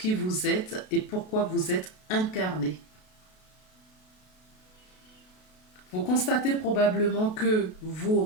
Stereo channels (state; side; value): late; right; 32 ms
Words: vous êtes et pourquoi vous êtes incarné. Vous constatez probablement que vous